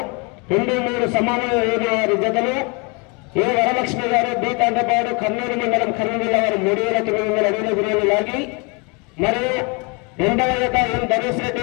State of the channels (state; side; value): quieter; right; 31.0 dB